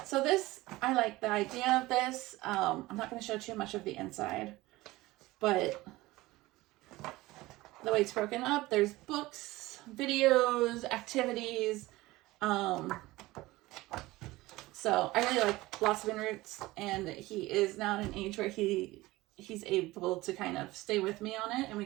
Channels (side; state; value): left; quieter; 19.2 dB